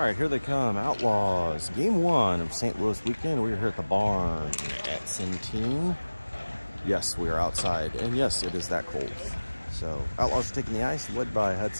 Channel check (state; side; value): inverted; both; correlation -1.00